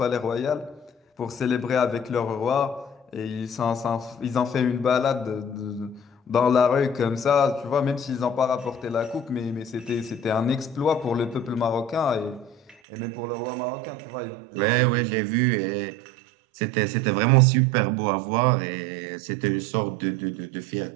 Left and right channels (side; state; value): left; drops out; at 12.8 s